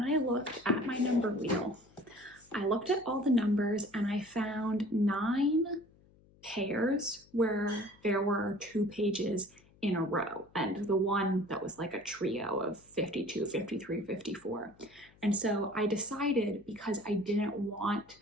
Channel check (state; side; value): noise; left; hum, 28 dB below the sound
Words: I looked at my number wheel, I looked at all the numbers and I found 9 pairs where there were 2 pages in a row, and the one that was like a trio of 52, 53, 54. And so I decided, because I didn't want